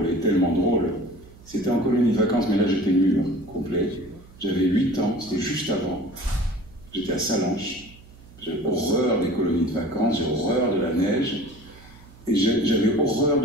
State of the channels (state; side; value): noise; right; hum, 22 dB below the sound